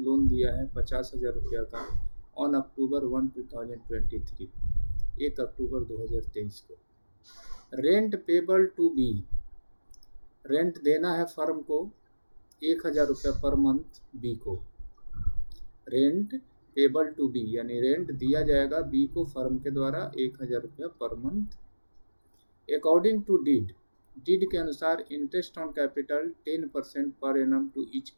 दिया है 50,000 रुपया का ऑन अक्टूबर 1, 2023, 1 अक्टूबर 2023 को। Rent payable to B, rent देना है फर्म को 1,000 रुपया पर मंथ बी को। रेंट पेबल टू बी यानी रेंट दिया जाएगा बी को फर्म के द्वारा 1,000 रुपया per month. According to deed, deed के अनुसार interest on capital 10% per annum to each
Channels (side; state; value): both; inverted; correlation -1.00